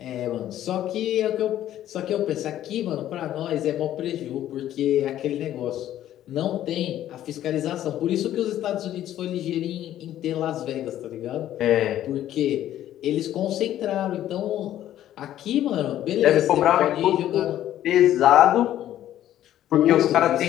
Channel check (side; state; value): right; quieter; 12.3 dB